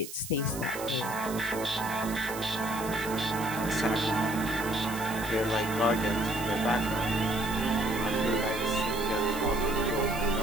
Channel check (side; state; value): right; noise; hiss, 12 dB below the sound